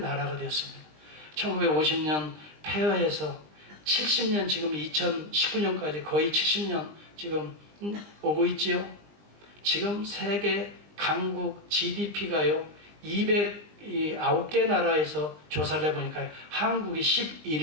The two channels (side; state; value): left; late; 20 ms